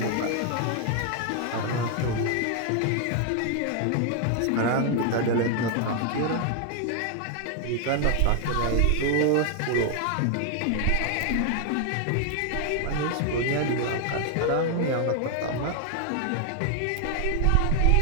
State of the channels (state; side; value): different; both; correlation 0.00